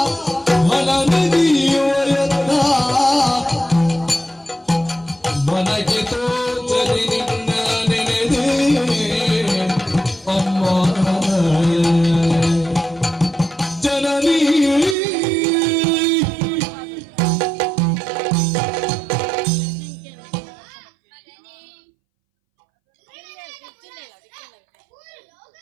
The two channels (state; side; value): drops out; left; at 15.0 s